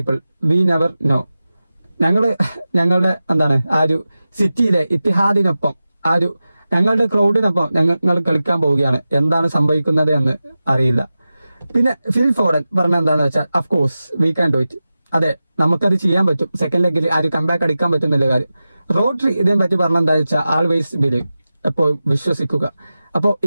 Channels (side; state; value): both; inverted; correlation -0.94